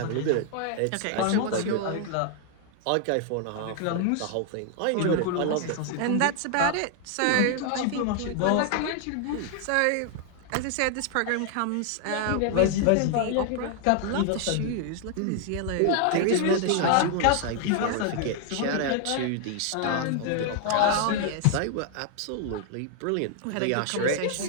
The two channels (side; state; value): both; different; correlation 0.00